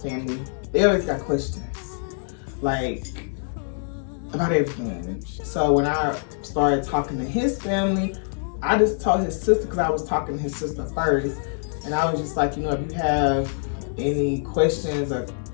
they always got questions, like, about everything. So when I started talking to his family, I just told his sister, because I was talking to his sister first, and I was just like, if you have any questions or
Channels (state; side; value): silent; right; digital silence